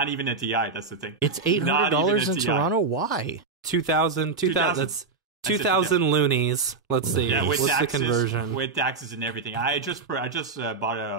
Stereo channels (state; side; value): quieter; left; 4.5 dB